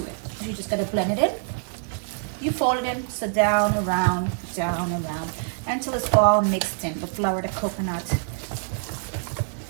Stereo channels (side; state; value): left; silent; digital silence